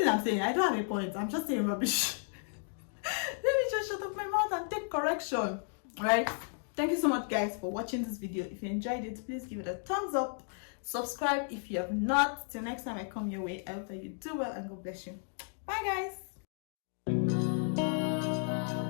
I'm saying, I don't have a point. I'm just saying rubbish. Let me just shut up my mouth and take correction. Right? Thank you so much, guys, for watching this video. If you enjoyed it, please give it a thumbs up. Subscribe if you have not. Till next time I come your way, I hope that you do well, and God bless you. Bye, guys.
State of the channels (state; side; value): silent; right; 55 dB below the other